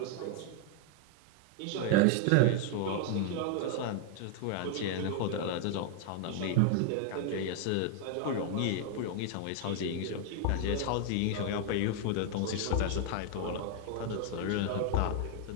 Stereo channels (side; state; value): both; different; correlation 0.00